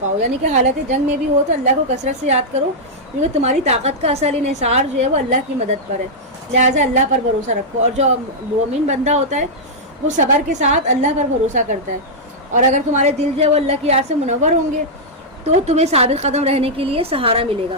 پاؤ. یعنی کہ حالت جنگ میں بھی ہو تو اللہ کو کثرت سے یاد کرو, کیونکہ تمہاری طاقت کا اصل انحصار جو ہے وہ اللہ کی مدد پر ہے, لہٰذا اللہ پر بھروسہ رکھو. اور جو مومن بندہ ہوتا ہے وہ صبر کے ساتھ اللہ پر بھروسہ کرتا ہے, اور اگر تمہارے دل جو ہے وہ اللہ کی یاد سے منور ہوں گے تو تمہیں ثابت قدم رہنے کے لیے سہارا ملے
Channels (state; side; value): normal; both; correlation -0.07